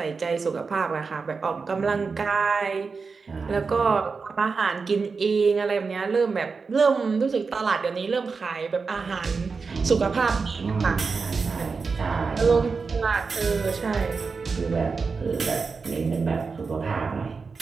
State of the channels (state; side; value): quieter; left; 4.8 dB